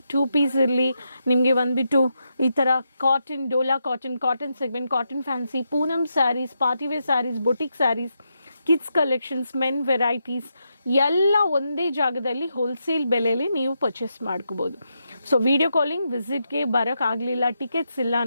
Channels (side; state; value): both; inverted; correlation -0.83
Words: 2 ಪೀಸ್ ಇರಲಿ ನಿಮಗೆ ಬಂದುಬಿಟ್ಟು ಈ ಥರ cotton, Dola cotton segment, cotton fancy, Poonam sarees, partywear sarees, boutique sarees, kids collections, men varieties ಎಲ್ಲ ಒಂದೇ ಜಾಗದಲ್ಲಿ ಹೋಲ್ಸೇಲ್ ಬೆಲೆಯಲ್ಲಿ ನೀವು ಪರ್ಚೇಸ್ ಮಾಡ್ಕೋಬೋದು. ಸೊ ವಿಡಿಯೋ ಕಾಲಿಂಗ್ ವಿಸಿಟ್ಗೆ ಬರೋಕ್ಕಾಗಲಿಲ್ಲ, ಟಿಕೆಟ್ಸ್ ಇಲ್ಲ